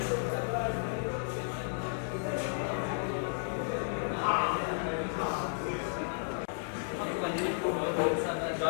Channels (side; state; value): right; silent; digital silence